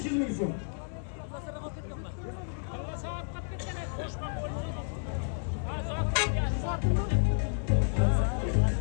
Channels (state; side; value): silent; right; 57 dB below the other